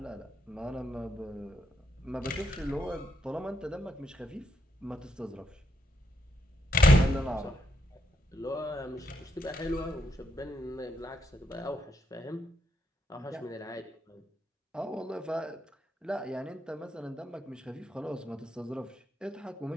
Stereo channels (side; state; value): both; normal; correlation 0.79